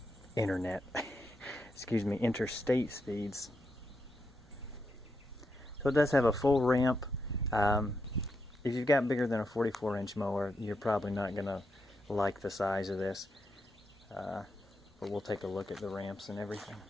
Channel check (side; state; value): both; normal; correlation 0.83